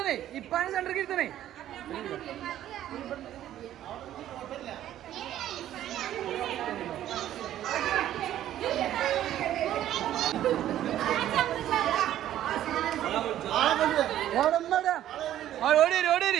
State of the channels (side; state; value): left; quieter; 12.2 dB